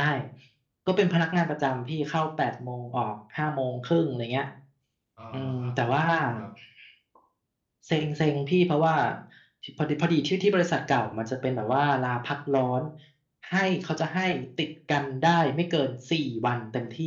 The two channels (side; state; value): both; identical; correlation 1.00